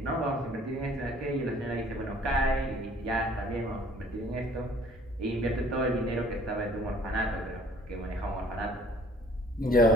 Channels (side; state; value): both; normal; correlation 0.55